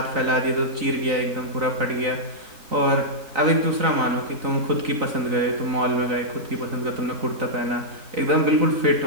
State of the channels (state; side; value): late; left; 3.9 ms